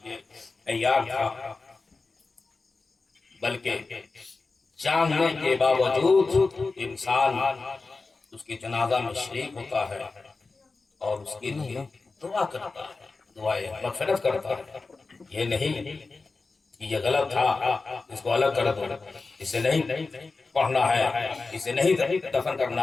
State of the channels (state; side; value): quieter; right; 3.9 dB